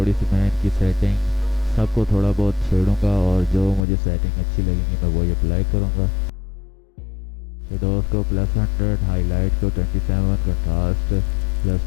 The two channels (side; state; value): right; drops out; at 3.8 s